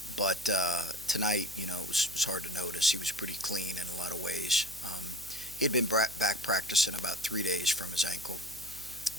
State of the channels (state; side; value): noise; right; hum, 19 dB below the sound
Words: But tonight, it was hard to notice. He was pretty clean in a lot of ways. He had been back practicing about 3 days from his ankle,